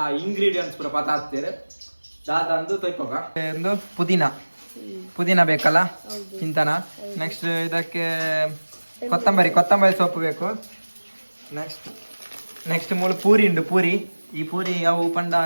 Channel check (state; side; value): inverted; both; correlation -1.00